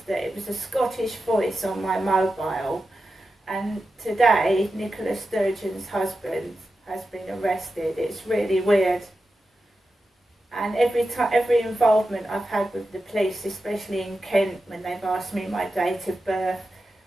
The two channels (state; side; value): normal; both; correlation 0.91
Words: that it was a Scottish voice on my mobile. And today, Nicola Sturgeon's husband has been arrested. It's really weird. And every involvement I've had with the police, especially in Kent, when they've asked me my date of birth,